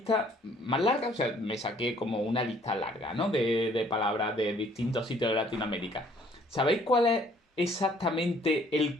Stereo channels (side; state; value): both; normal; correlation 0.60